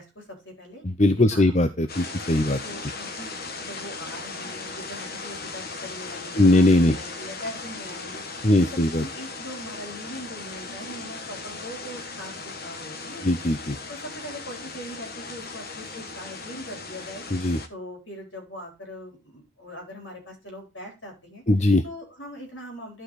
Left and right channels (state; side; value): normal; both; correlation 0.67